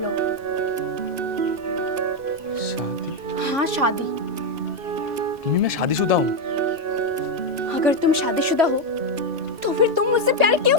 शादी? हाँ शादी। मम्मी मैं शादीशुदा हूँ। अगर तुम शादीशुदा हो तो फिर तुम मुझसे प्यार क्यों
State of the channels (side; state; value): left; late; 2.5 ms